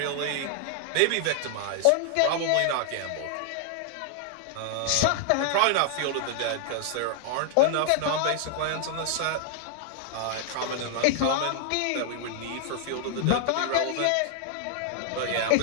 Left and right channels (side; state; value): both; different; correlation -0.01